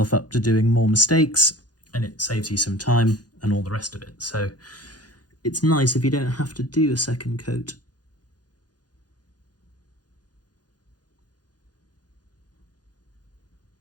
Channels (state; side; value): late; right; 0.69 ms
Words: up to doing more mistakes and it saves you some time and all the rest of it. So it's nice if you don't have to do a second coat.